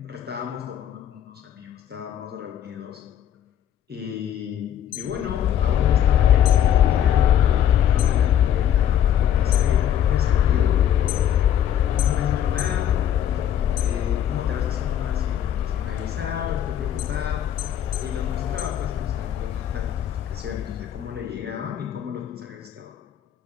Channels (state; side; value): quieter; right; 10.2 dB